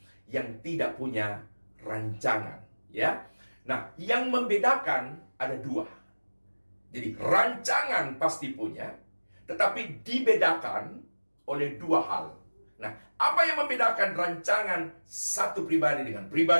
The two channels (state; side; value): inverted; both; correlation -1.00